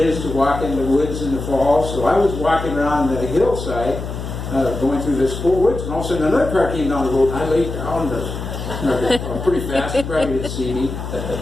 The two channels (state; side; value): noise; left; hum, 7 dB below the sound